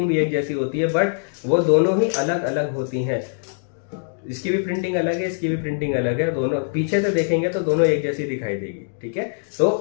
भी एक जैसी होती है, बट वो दोनों ही अलग अलग होती हैं। इसकी भी प्रिंटिंग अलग है, इसकी भी प्रिंटिंग अलग है, दोनों पीछे से देखेंगे तो दोनों एक जैसी दिखाई देगी, ठीक है।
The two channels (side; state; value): right; silent; digital silence